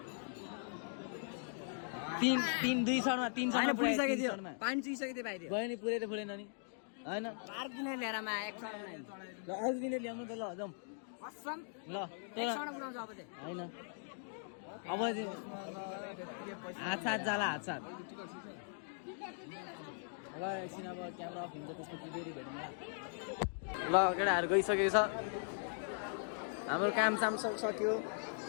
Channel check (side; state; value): right; silent; digital silence